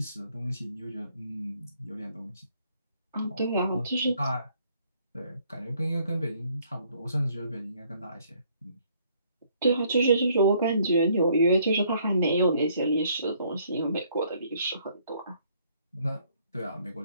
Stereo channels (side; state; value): both; inverted; correlation -0.65